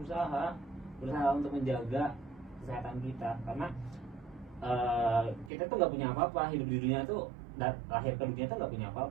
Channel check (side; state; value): left; drops out; at 5.5 s